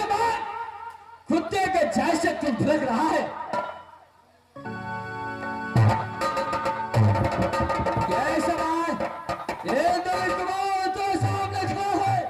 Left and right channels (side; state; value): both; identical; correlation 1.00